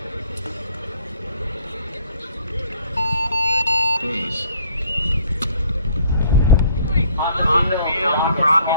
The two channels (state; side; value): inverted; both; correlation -0.60